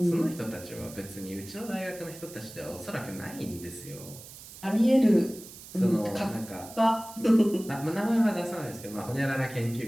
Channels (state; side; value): noise; right; hiss, 16 dB below the sound